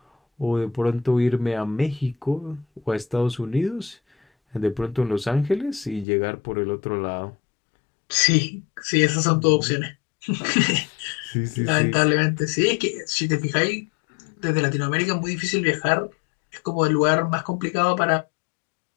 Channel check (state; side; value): drops out; right; at 6.1 s